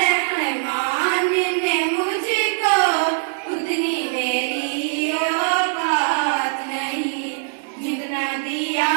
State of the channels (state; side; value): silent; left; digital silence